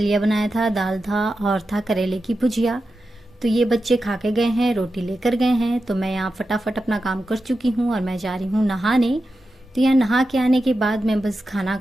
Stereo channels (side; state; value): both; normal; correlation 0.91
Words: बनाया था, दाल था और था करेले की भुजिया। तो ये बच्चे खा के गए हैं, रोटी लेकर गए हैं, तो मैं यहाँ फटाफट अपना काम कर चुकी हूँ और मैं जा रही हूँ नहाने। तो यहाँ नहा के आने के बाद मैं बस खाना